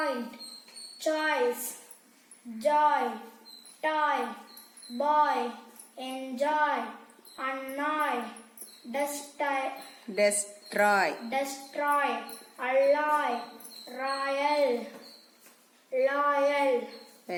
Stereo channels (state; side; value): identical; both; correlation 1.00